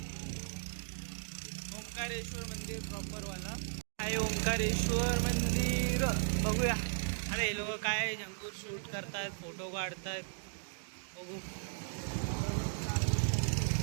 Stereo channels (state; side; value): silent; left; digital silence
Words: ओंकारेश्वर मंदिर प्रॉपर वाला आहे. ओंकारेश्वर मंदिर बघूया. अरे हे लोक काय जंगूर शूट करतायत, फोटो काढतायत. बघू.